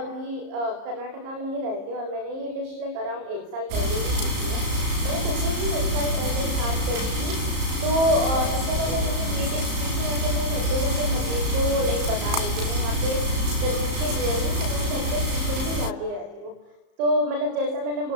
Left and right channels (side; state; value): left; late; 34 ms